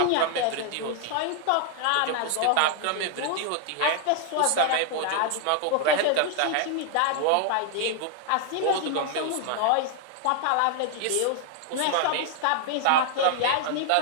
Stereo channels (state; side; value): different; both; correlation 0.00